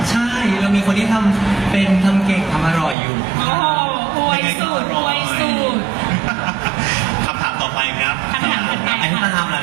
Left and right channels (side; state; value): left; drops out; at 3.0 s